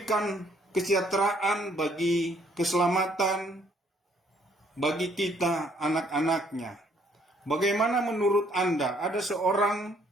kesejahteraan bagi keselamatan bagi kita anak-anaknya. Bagaimana menurut Anda? Ada seorang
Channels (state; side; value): normal; both; correlation 0.65